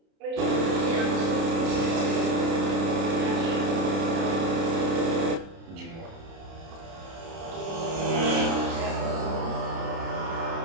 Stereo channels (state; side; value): late; left; 30 ms